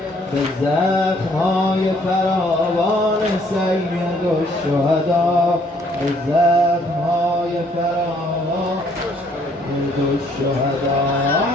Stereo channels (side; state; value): both; normal; correlation 0.64